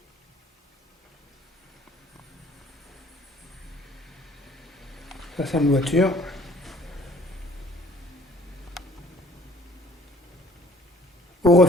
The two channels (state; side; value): normal; both; correlation 0.55